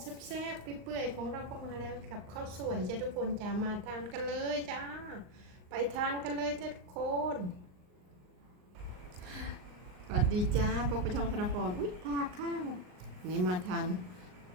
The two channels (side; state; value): left; late; 39 ms